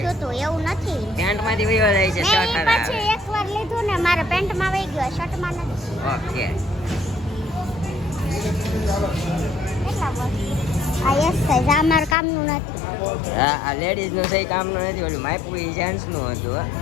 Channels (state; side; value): drops out; right; at 12.2 s